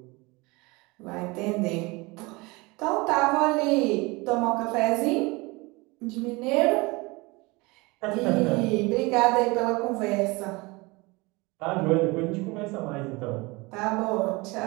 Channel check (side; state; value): left; quieter; 24.6 dB